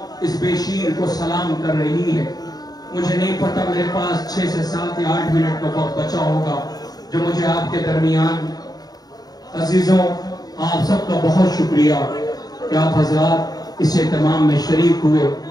اس بیشیر کو سلام کر رہی ہے۔ مجھے نہیں پتا، میرے پاس 6 سے 7 یا 8 منٹ کا وقت بچا ہوگا جو مجھے آپ کے درمیان، عزیزوں آپ سب کا بہت شکریہ کہ آپ حضرات اس اہتمام میں شریک ہوئے،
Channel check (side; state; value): right; late; 0.19 ms